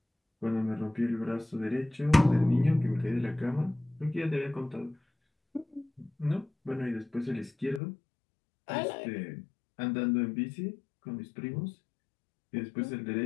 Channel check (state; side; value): drops out; right; at 7.8 s